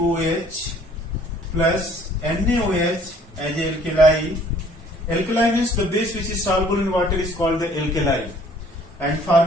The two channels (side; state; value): both; normal; correlation 0.57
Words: plus NaOH as a alkali. Alkali means the base which is soluble in water is called the alkali. And